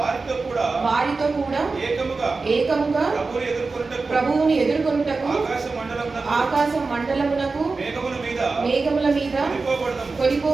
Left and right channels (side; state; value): left; quieter; 4.0 dB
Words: కూడా ఏకముగా ప్రభువుని ఎదుర్కొనుటకు ఆకాశ మండలమునకు మేఘముల మీద